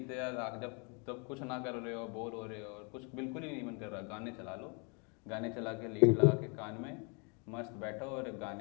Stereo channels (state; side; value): quieter; right; 35.5 dB